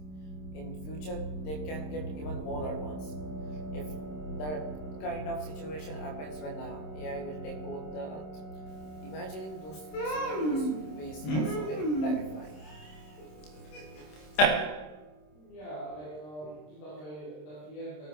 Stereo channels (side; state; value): right; late; 26 ms